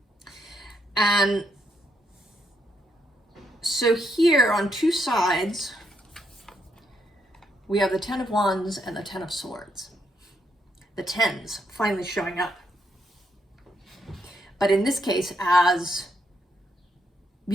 And so here on two sides, we have the Ten of Wands and the Ten of Swords. The tens finally showing up. But in this case, as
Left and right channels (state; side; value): normal; both; correlation 0.77